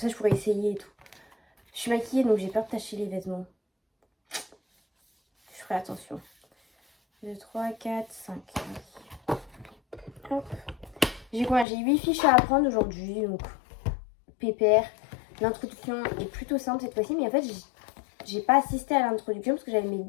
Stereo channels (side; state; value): right; drops out; at 11.7 s